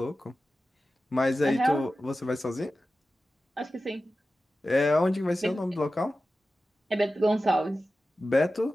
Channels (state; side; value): normal; both; correlation 0.94